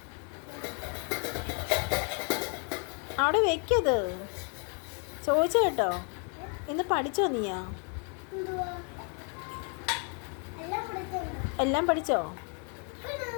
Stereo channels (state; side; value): quieter; right; 39.4 dB